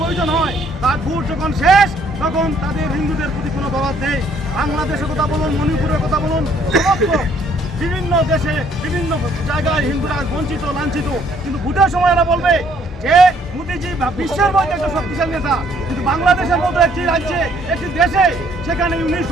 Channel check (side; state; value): both; normal; correlation 0.64